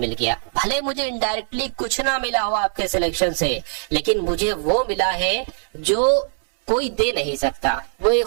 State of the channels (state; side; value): silent; left; 65 dB below the other